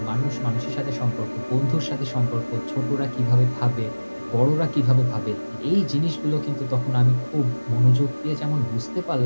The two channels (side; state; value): both; inverted; correlation -1.00